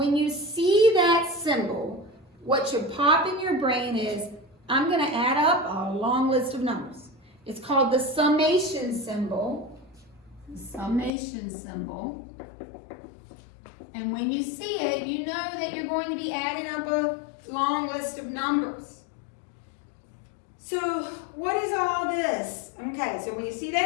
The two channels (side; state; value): right; drops out; at 11.1 s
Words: you see that symbol, what should pop in your brain is, I'm going to add up a long list of numbers. It's called the summation symbol. The summation symbol. And when you see it, you know that you're going to be adding up a long list of numbers. So what is all this? Okay, so when you see